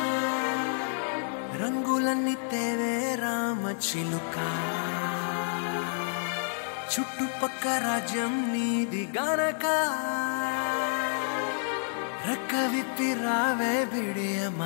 రంగులన్నీ తేవే రామ చిలుక చుట్టుపక్క రాజ్యం నీది గనక రెక్క విప్పి రావే బిడియ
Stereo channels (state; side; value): silent; right; 58 dB below the other